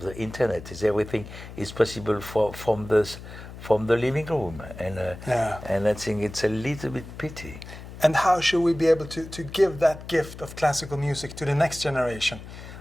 the internet is everything is possible from the living room, and I think it's a little bit pity. And how should we be able to give that gift of classical music to the next generation?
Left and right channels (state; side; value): noise; left; hum, 14 dB below the sound